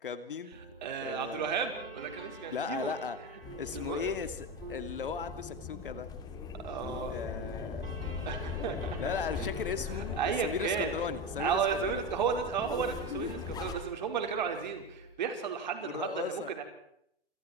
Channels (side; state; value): both; normal; correlation 0.19